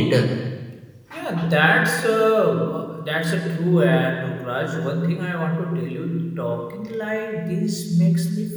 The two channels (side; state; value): both; identical; correlation 1.00